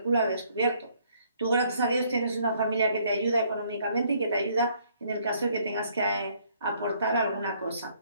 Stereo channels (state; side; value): inverted; both; correlation -0.65